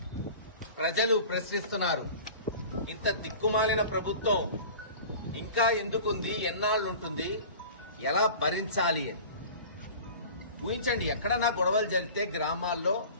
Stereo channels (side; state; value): both; inverted; correlation -0.40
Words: ప్రజలు ప్రశ్నిస్తున్నారు. ఇంత దిక్కుమాలిన ప్రభుత్వం ఇంకా ఎందుకుంది, ఎన్నాళ్ళుంటుంది, ఎలా భరించాలి అని ఊహించండి. ఎక్కడన్నా గొడవలు జరిగితే గ్రామాల్లో